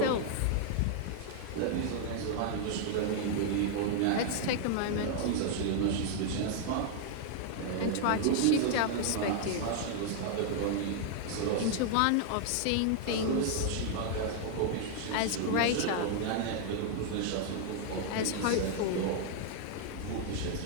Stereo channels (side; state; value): both; different; correlation 0.00